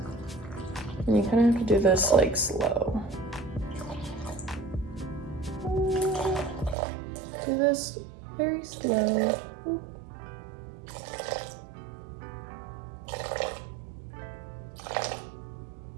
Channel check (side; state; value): left; drops out; at 6.8 s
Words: And you kind of have to do this like slow. Do this very slow.